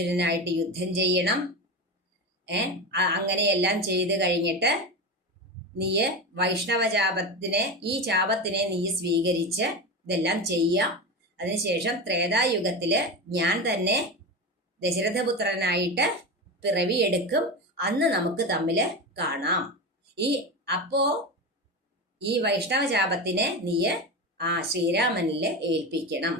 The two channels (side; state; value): both; normal; correlation 0.21